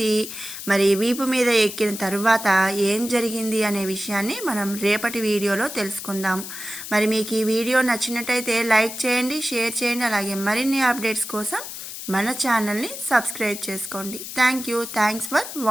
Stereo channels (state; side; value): noise; left; hiss, 9 dB below the sound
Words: మరి వీపు మీద ఎక్కిన తర్వాత ఏం జరిగింది అనే విషయాన్ని మనం రేపటి వీడియోలో తెలుసుకుందాము. మరి మీకు ఈ వీడియో నచ్చినట్టయితే లైక్ చేయండి, షేర్ చేయండి. అలాగే మరిన్ని అప్డేట్స్ కోసం మన ఛానల్ని సబ్స్క్రైబ్ చేసుకోండి. Thanks for